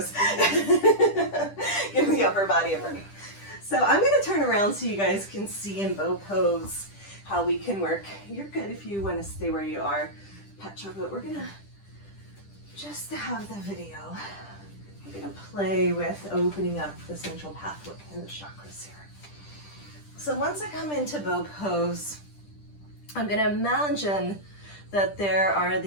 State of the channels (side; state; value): right; late; 10 ms